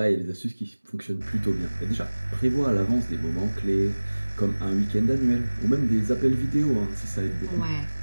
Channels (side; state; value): both; inverted; correlation -1.00